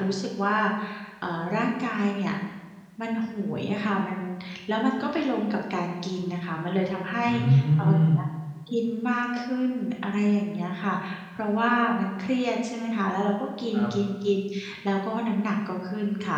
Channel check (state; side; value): identical; both; correlation 1.00